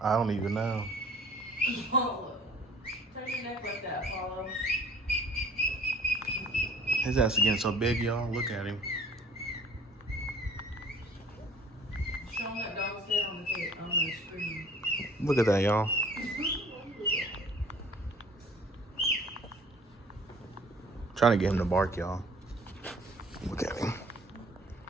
I don't even know. Turn your neck like that, Paulo. His ass is getting so big, y'all. Look at him. Show him that dog's head on the screen. Look at that, y'all. Trying to get him to bark, y'all. Look at him.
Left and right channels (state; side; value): normal; both; correlation 0.53